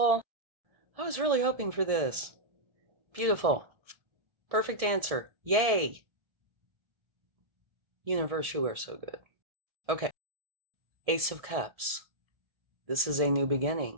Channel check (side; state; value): left; late; 1.7 ms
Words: I was really hoping for this. Beautiful. Perfect answer. Yay. Universe, you are so good. Okay. Ace of Cups. This is a new